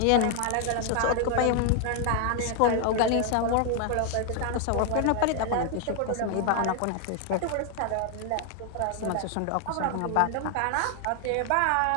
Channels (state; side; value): different; both; correlation 0.00